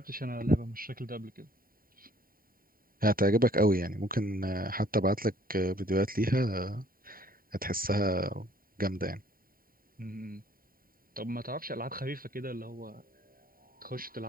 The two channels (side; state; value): left; late; 0.42 ms